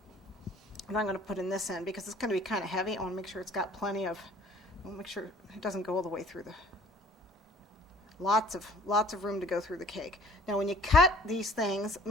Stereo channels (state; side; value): normal; both; correlation 0.53